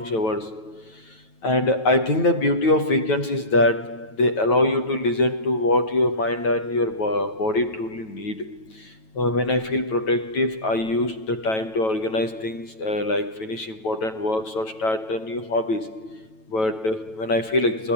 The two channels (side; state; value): right; late; 9.1 ms